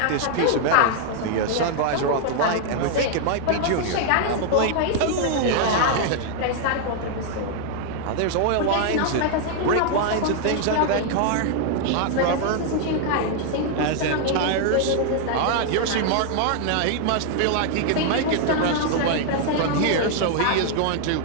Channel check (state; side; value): different; both; correlation 0.00